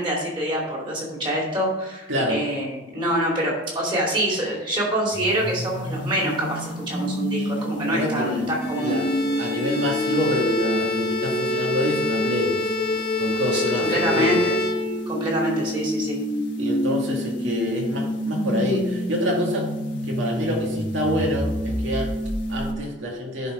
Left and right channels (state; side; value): normal; both; correlation 0.40